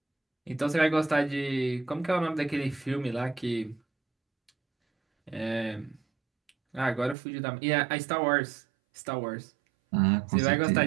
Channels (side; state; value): left; drops out; at 7.2 s